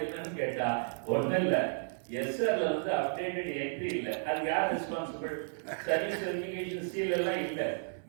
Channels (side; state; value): left; silent; 56 dB below the other